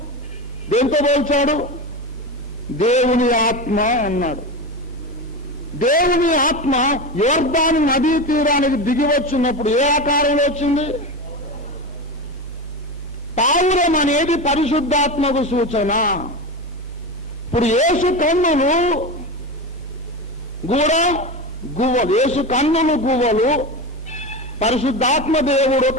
దేంతో పోల్చాడు? దేవుని ఆత్మ అన్నాడు. దేవుని ఆత్మ యోర్దాను నదీ తీరానికి దిగి వచ్చినప్పుడు ఏ ఆకారంలో వచ్చింది? పావురం అనేది పరిశుద్ధాత్మకు సూచన. ఇప్పుడు యేసు కన్నులు కూడా గువ్వలు. యేసు కన్నులు గువ్వలు, పరిశుద్ధాత్మ దేవుడు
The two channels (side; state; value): both; normal; correlation 0.22